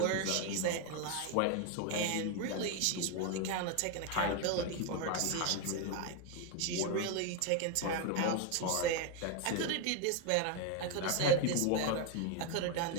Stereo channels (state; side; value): different; both; correlation 0.01